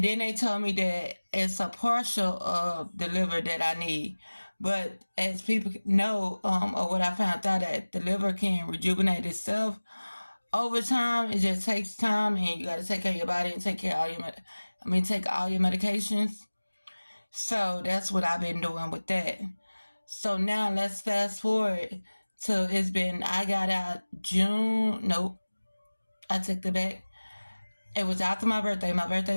then they told me that it's a partial of the liver that I need. But as people know, or what I found out, that the liver can rejuvenate itself over time. It just takes time, and you got to take care of your body and take care of all your, take all your medications. So that's what I've been doing with that. So now let's fast forward to I got out June. Nope, I took the back. It was after my birthday. My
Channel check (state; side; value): inverted; both; correlation -1.00